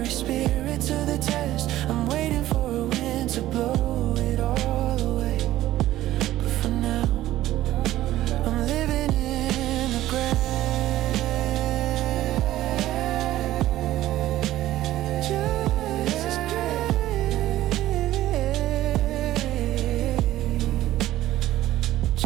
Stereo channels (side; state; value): left; quieter; 14.6 dB